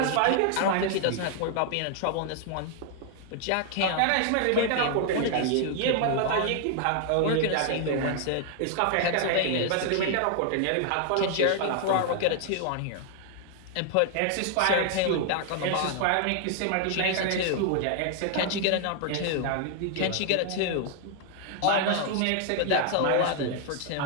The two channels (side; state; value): both; different; correlation 0.00